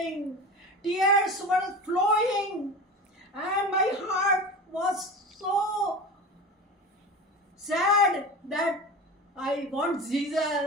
Tears were flowing, and my heart was so sad that I want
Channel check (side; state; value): both; normal; correlation 0.31